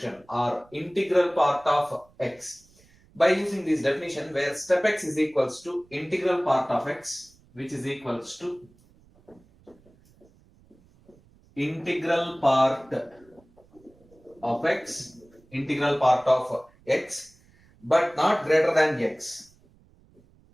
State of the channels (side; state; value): right; noise; rumble, 29 dB below the sound